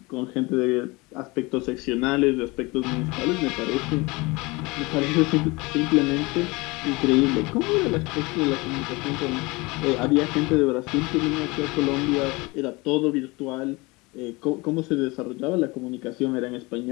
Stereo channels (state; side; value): quieter; right; 24.4 dB